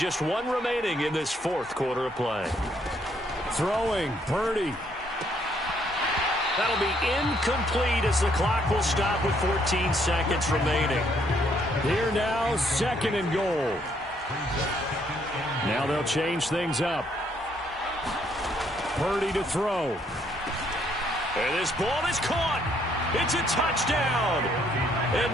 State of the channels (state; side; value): normal; both; correlation 0.69